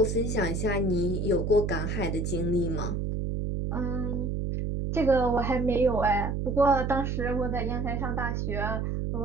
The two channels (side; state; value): right; noise; hum, 1 dB below the sound